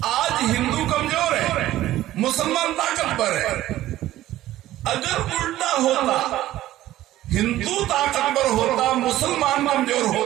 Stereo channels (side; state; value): left; quieter; 14.6 dB